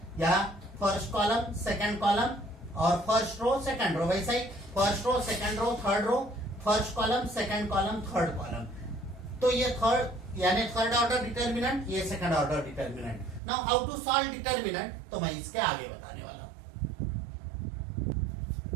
या फर्स्ट कॉलम सेकंड कॉलम और फर्स्ट रो सेकंड रो, वैसा ही first row second row third row, first column second column third column. तो ये थर्ड यानी थर्ड ऑर्डर डिटर्मिनेंट, ये second order determinant. Now how to solve determinant, तो मैं इसके आगे बताने वाला हूं।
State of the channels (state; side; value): drops out; left; at 13.4 s